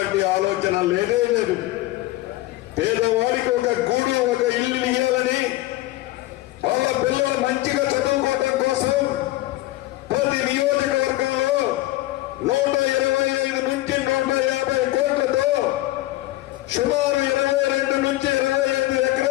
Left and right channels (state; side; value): quieter; right; 17.5 dB